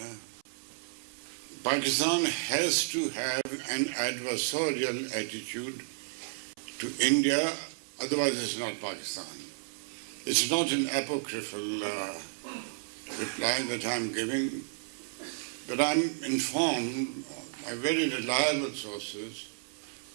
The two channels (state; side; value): silent; left; 56 dB below the other